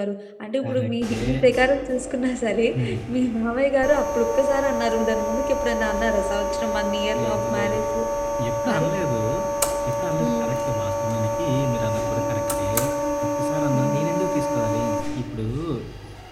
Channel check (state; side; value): identical; both; correlation 1.00